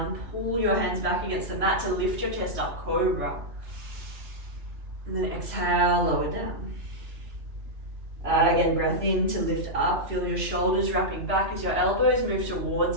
pull your hands back against the mat to lift your chest up, cobra. And then exhale, lower down. Again, breath in to lift up, feel your shoulders wrapping back as your elbows move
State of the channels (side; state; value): left; late; 3.0 ms